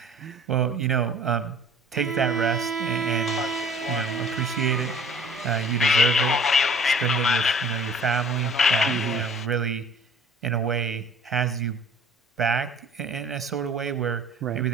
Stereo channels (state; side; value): normal; both; correlation 0.49